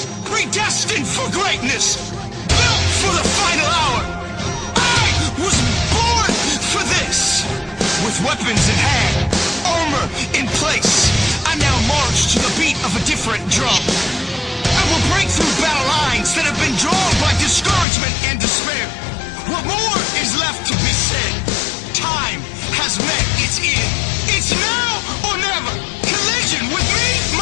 predestined for greatness, built for the final hour. I was born for this. With weapons in hand, armor in place, I now march to the beat of a different drum. I will break through battle lines that have been drawn by discouragement and despair. What more is left to be said? Time has met its end. It's now or never. Collision with me,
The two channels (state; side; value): drops out; right; at 17.9 s